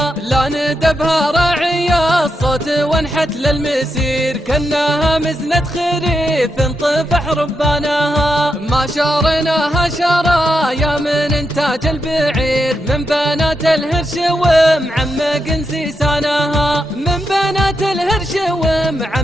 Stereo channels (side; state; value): both; normal; correlation 0.85